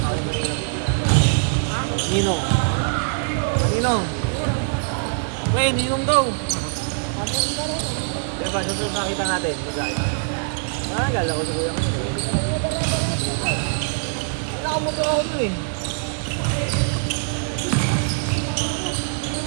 Ninong. Ninong. Wait, ninong daw. Diba, susunod nakita natin. Bigla ito. Gala ko sa kuya ko. Nakamotor ako nun eh.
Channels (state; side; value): silent; left; digital silence